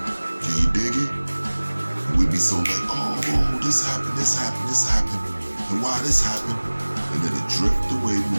Can you dig it? And we be so like, oh, this happened, this happened, this happened, and why this happened, and then it drift away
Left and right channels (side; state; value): both; inverted; correlation -1.00